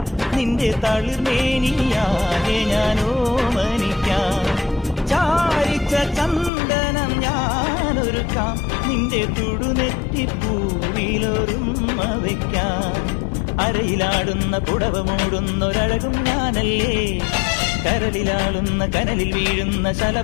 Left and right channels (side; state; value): right; drops out; at 6.5 s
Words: നിന്റെ തളിർമേനിയാകെ ഞാനോ മനിക്കാം ചാരിച്ച ചന്ദനം ഞാനൊരുക്കാം നിന്റെ തുടുനെറ്റിപ്പൂവിലൊരുമ്മ വയ്ക്കാം അരയിലാടുന്ന പുടവ മൂടുന്നൊരഴകും ഞാനല്ലേ കരളിലാളുന്ന കനലിൽ വീഴുന്ന